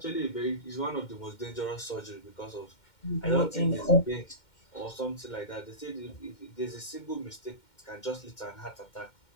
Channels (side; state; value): right; late; 2.1 ms